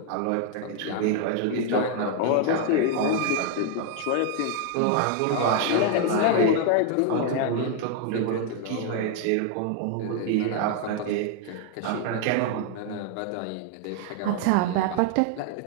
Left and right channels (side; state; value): both; different; correlation 0.00